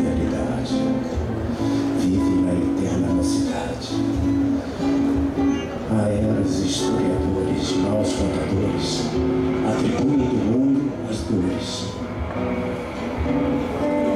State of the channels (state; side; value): identical; both; correlation 1.00